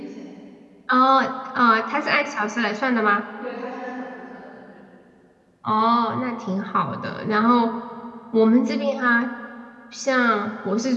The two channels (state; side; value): identical; both; correlation 1.00